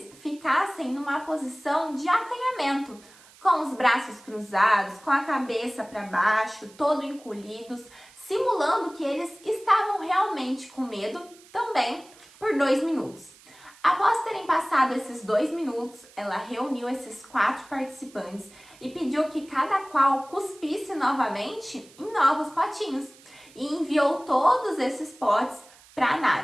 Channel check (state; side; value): noise; right; hiss, 24 dB below the sound